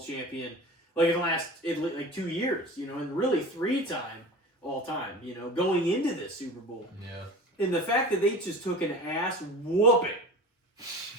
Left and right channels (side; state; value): both; normal; correlation 0.36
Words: like in the last 2 years, and really 3-time all time, going into this Super Bowl. Yeah. And the fact that they just took an ass whooping